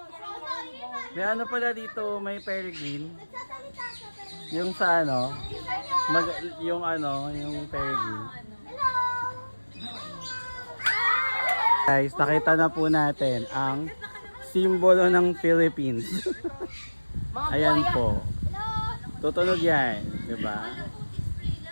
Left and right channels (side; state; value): both; inverted; correlation -1.00